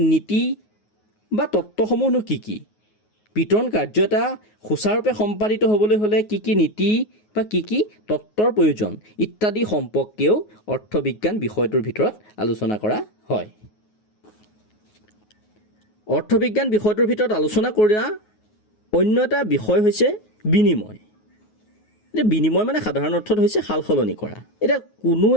নীতি বা তত্ত্বসমূহনো কি কি? বিতৰণ কাৰ্য এটা সুচাৰুৰূপে সম্পাদিত হ'বলৈ হ'লে কি কি নীতি বা কি কি তত্ত্বৰ প্ৰয়োজন ইত্যাদি সম্পৰ্কেও অৰ্থবিজ্ঞান বিষয়টোৰ ভিতৰত আলোচনা কৰা হয়। অৰ্থবিজ্ঞান বিষয়টোৰ ভিতৰত আলোচনা কৰা অন্য এটা বিষয় হৈছে বিনিময়। এতিয়া বিনিময় মানে সাধাৰণ অৰ্থত হৈছে সাল সলনি কৰা। এতিয়া কোনো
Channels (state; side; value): late; right; 9.4 ms